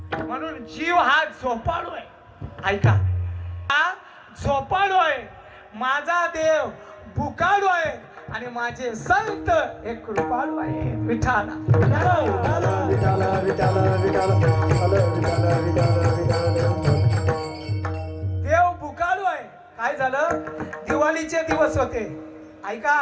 म्हणून जीव हा झोपाळू आहे. ऐका, हा झोपाळू आहे. माझा देव भुकाळू आहे आणि माझे संत हे कृपाळू आहे. विठाला देव भुकाळू आहे. काय झालं? दिवाळीचे दिवस होते.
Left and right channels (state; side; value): identical; both; correlation 1.00